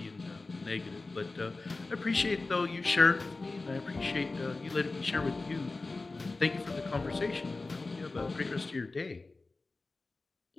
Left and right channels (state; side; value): quieter; right; 3.5 dB